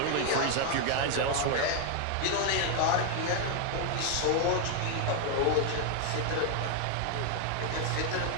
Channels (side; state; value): both; different; correlation 0.00